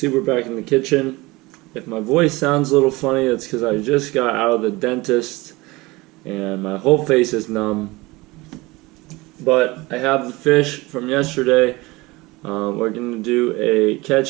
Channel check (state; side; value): quieter; left; 22.0 dB